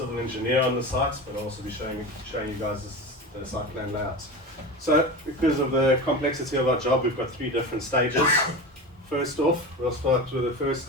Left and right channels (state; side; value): normal; both; correlation 0.27